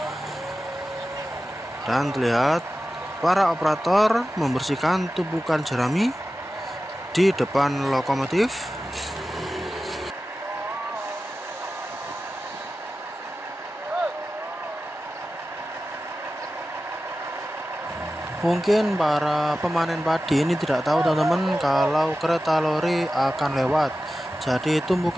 Dan terlihat para operator membersihkan tumpukan jerami di depan lokomotif. Mungkin para pemanen padi ini tidak tahu teman-teman kalau kereta lori akan lewat. Jadi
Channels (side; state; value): both; normal; correlation 0.94